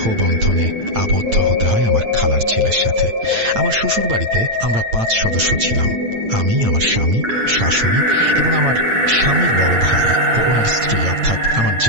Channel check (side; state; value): left; late; 8.9 ms